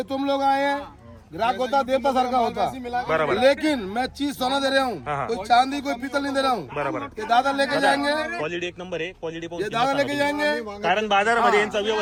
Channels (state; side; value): identical; both; correlation 1.00